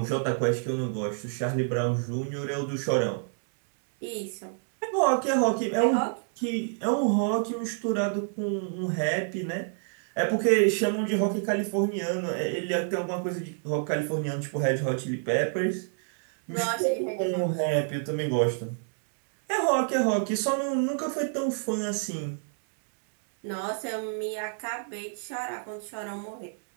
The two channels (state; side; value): silent; left; digital silence